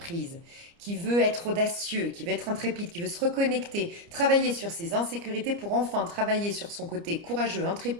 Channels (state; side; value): late; left; 29 ms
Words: qui veut être audacieux, qui veut être intrépide, qui veut se reconnecter, travailler sur ses insécurités pour enfin travailler sur son côté courageux,